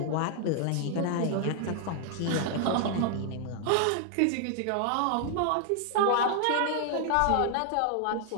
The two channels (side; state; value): both; different; correlation 0.00